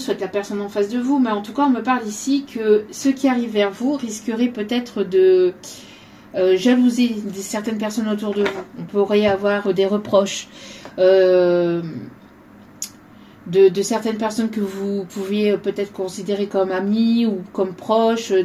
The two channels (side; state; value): both; identical; correlation 1.00